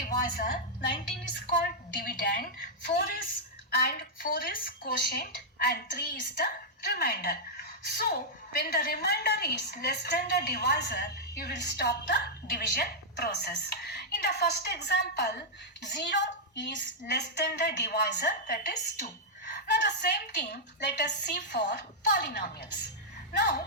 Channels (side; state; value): both; normal; correlation -0.07